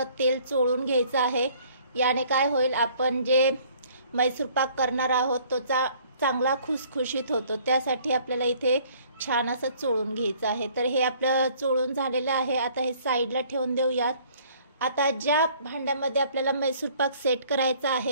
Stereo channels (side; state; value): both; inverted; correlation -0.57